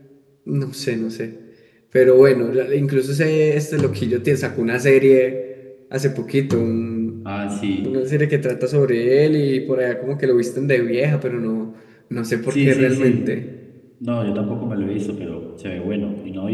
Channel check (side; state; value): both; identical; correlation 1.00